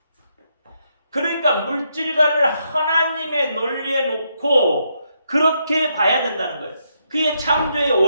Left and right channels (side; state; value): both; inverted; correlation -0.78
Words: 그러니까 물질과를 하나님의 논리에 놓고 그렇게 봐야 된다는 거예요. 그게 창조의